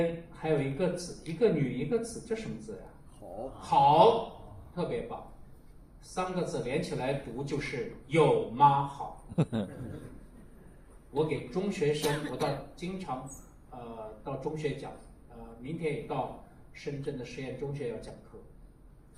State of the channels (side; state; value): both; identical; correlation 1.00